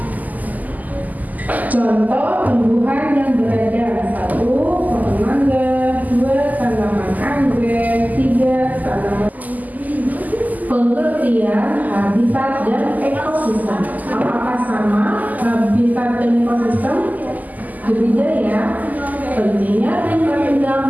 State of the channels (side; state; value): left; late; 0.080 ms